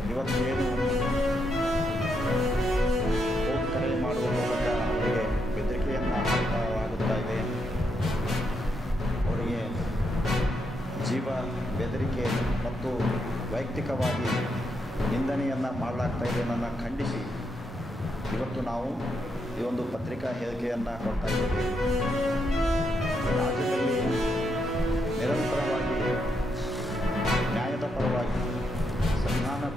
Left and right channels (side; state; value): both; normal; correlation 0.80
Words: ಇವತ್ತೇನು ಫೋನ್ ಕರೆ ಮಾಡುವ ಮೂಲಕ ಅವರಿಗೆ ಬೆದರಿಕೆಯನ್ನು ಹಾಕಲಾಗುತ್ತಾ ಇದೆ, ಅವರಿಗೆ ಜೀವ ಬೆದರಿಕೆ ಮತ್ತು ವೈಯಕ್ತಿಕವಾಗಿ ನಿಂದನೆಯನ್ನು ಮಾಡಲಾಗ್ತಾ ಇದೆ ಅನ್ನೋದನ್ನು ಖಂಡಿಸಿ ಇವತ್ತು ನಾವು ಈ ಒಂದು ಪತ್ರಿಕಾ ಹೇಳಿಕೆಯನ್ನು ಕೊಡ್ತಾ ಇದ್ದೇವೆ. ರಾಜ್ಯದಲ್ಲಿ ನಿರಂತರವಾಗಿ ನ್ಯಾಯದ ಪರವಾಗಿ